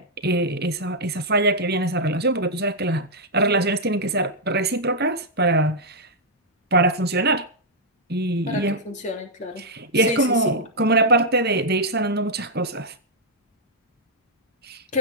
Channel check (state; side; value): normal; both; correlation -0.07